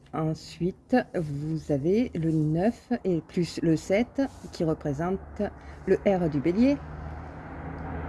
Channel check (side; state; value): both; identical; correlation 1.00